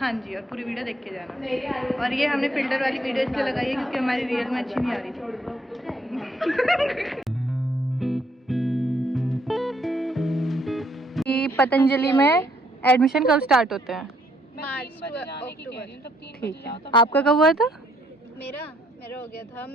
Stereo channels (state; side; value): normal; both; correlation 0.69